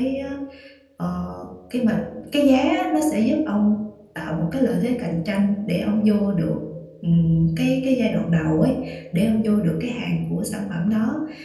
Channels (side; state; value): both; identical; correlation 1.00